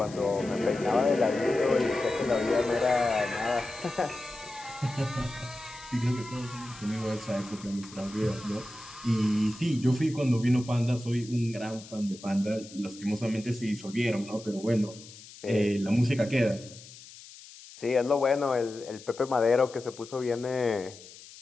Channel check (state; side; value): noise; left; hiss, 18 dB below the sound